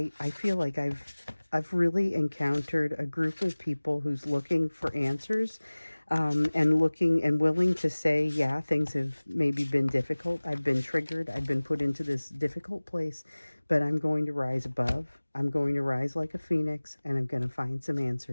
feel like I've really encountered a group of people who's looking for answers, and looking and willing to say, yeah, things have maybe been difficult. I've been triggered. I've been put into this difficult place, but I'm going to rise above. I'm going to rise like a phoenix, and I'm going to find some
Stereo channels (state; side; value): inverted; both; correlation -1.00